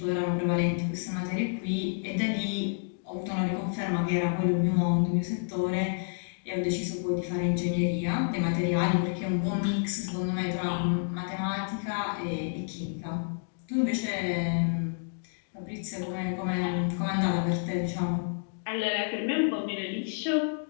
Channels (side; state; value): right; silent; digital silence